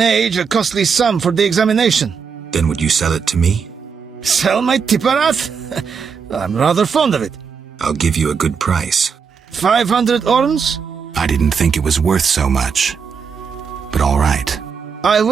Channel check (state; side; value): quieter; left; 6.1 dB